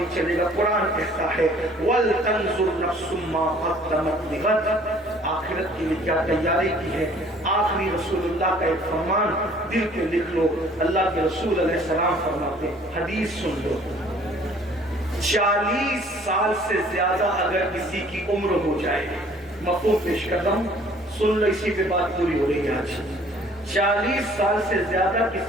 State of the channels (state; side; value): normal; both; correlation 0.55